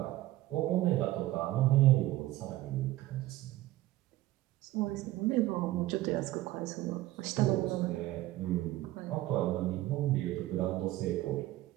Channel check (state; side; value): quieter; left; 16.3 dB